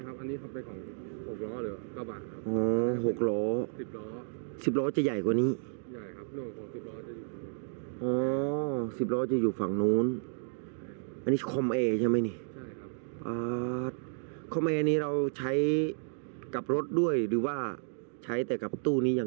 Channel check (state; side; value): silent; left; digital silence